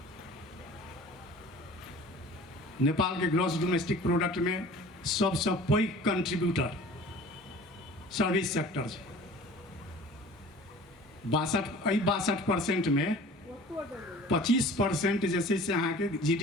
नेपाल के ग्रॉस डोमेस्टिक प्रोडक्ट में सबसे पैघ कंट्रीब्यूटर सर्विस सेक्टर है। 62% में 25% जैसे से अहाँ के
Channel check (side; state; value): both; normal; correlation 0.44